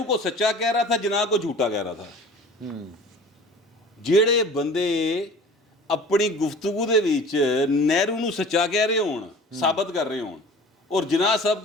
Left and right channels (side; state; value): both; normal; correlation 0.43